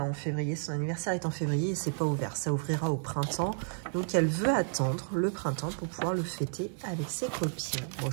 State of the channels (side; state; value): left; silent; digital silence